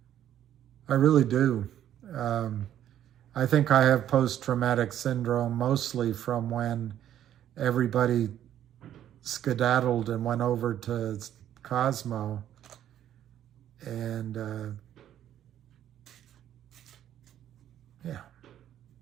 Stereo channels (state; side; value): quieter; left; 11.1 dB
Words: I really do. I think I have post-traumatic syndrome mostly from when everybody skedaddled and went over to Cosmo. And yeah.